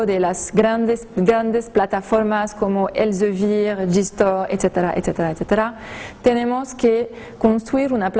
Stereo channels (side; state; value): both; identical; correlation 1.00